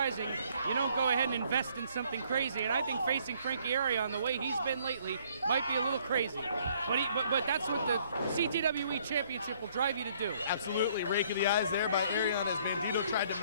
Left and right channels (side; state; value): both; inverted; correlation -0.63